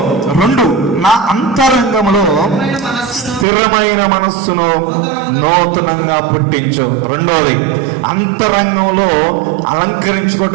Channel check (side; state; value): left; drops out; at 3.5 s